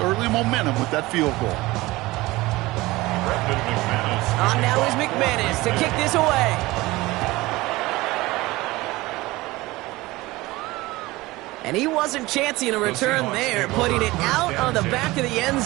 early momentum with that field goal. On now is McManus to kick this away. And he wasn't chancing a return there, putting it out on the back of the end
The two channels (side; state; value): left; quieter; 20.0 dB